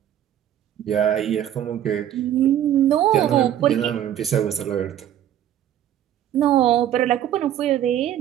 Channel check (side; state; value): left; quieter; 11.1 dB